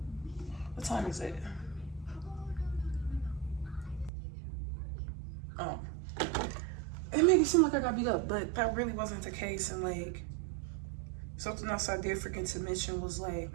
What time is it? Oh. It made it seem like I got beat up, but that really wasn't the case. And like, something else I did forget to mention was like,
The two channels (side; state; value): left; drops out; at 4.1 s